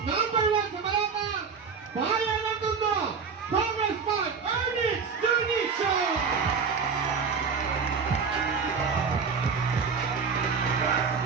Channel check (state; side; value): quieter; left; 5.7 dB